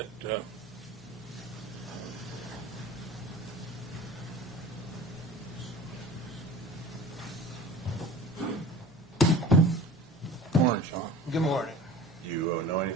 Morning, Sean. Good morning. Do you know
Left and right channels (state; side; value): normal; both; correlation 0.41